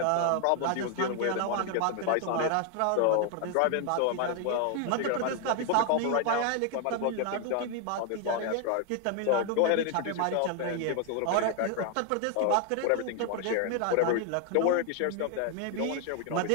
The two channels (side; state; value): both; different; correlation 0.01